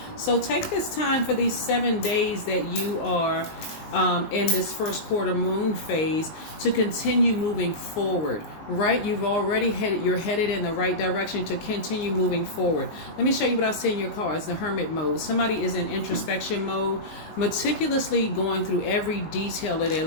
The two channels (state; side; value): late; right; 19 ms